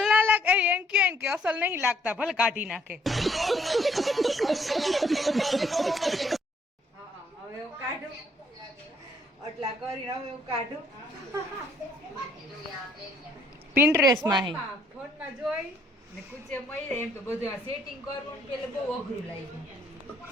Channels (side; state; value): both; normal; correlation 0.66